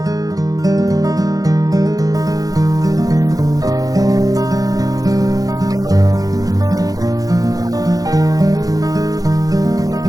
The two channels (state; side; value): late; left; 0.18 ms